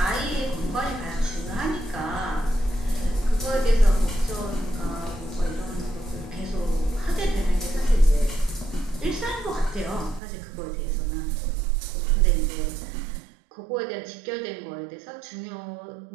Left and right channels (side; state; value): left; drops out; at 10.2 s